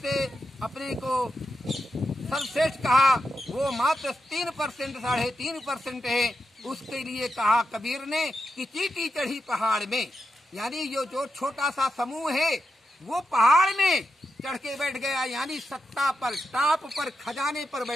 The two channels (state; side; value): normal; both; correlation 0.87